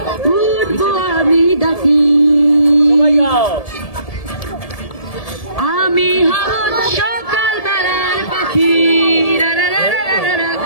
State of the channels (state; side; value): late; right; 1.7 ms